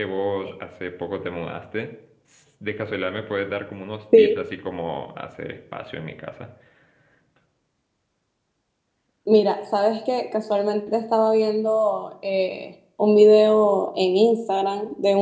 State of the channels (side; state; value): both; identical; correlation 1.00